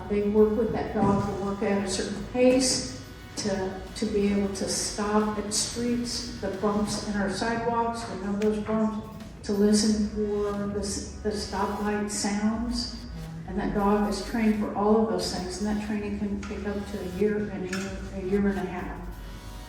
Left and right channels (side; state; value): both; identical; correlation 1.00